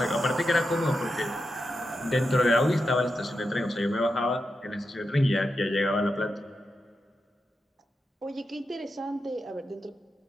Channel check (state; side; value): normal; both; correlation 0.88